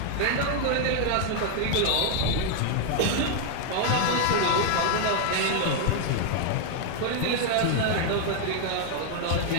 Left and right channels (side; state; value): both; different; correlation 0.00